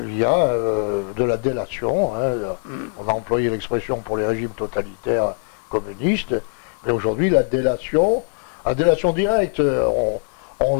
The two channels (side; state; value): right; silent; digital silence